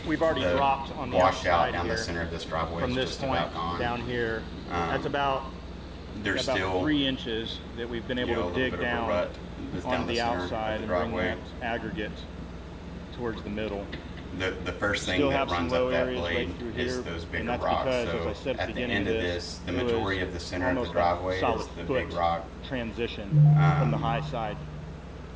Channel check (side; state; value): both; identical; correlation 1.00